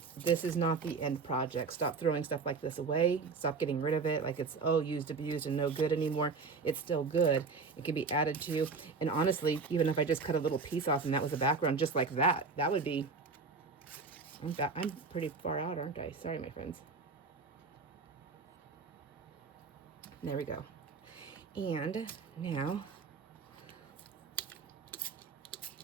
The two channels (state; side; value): quieter; left; 4.6 dB